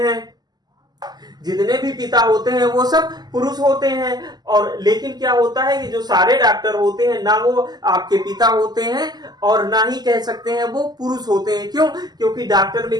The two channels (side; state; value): left; late; 0.20 ms